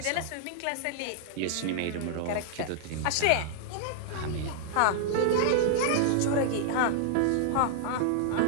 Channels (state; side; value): different; both; correlation -0.01